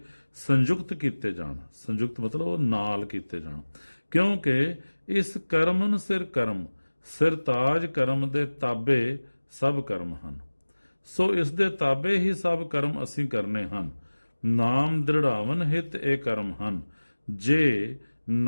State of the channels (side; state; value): both; inverted; correlation -1.00